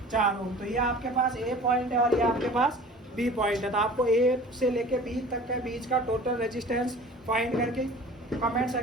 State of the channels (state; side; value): normal; both; correlation 0.43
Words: 4 ओम। तो ये आपके पास ए पॉइंट है और ये आपके पास बी पॉइंट है। तो आपको ए से लेके बी तक के बीच का टोटल रेजिस्टेंस फाइंड करके कमेंट